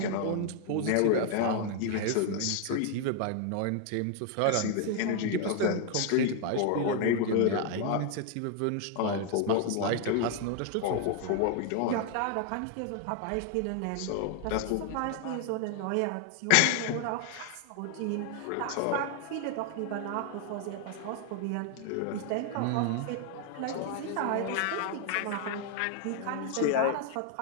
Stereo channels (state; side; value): different; both; correlation 0.00